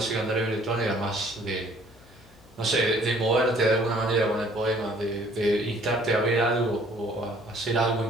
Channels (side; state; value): left; noise; hum, 27 dB below the sound